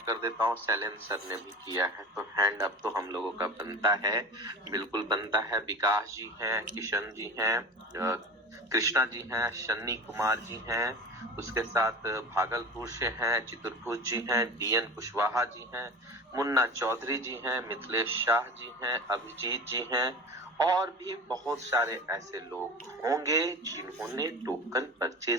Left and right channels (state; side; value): normal; both; correlation 0.33